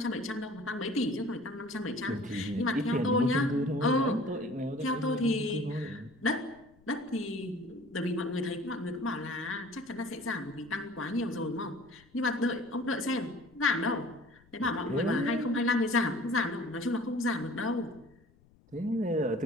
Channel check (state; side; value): noise; left; rumble, 29 dB below the sound